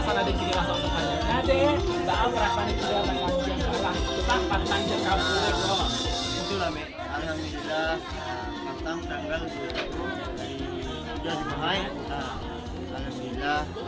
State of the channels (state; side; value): identical; both; correlation 1.00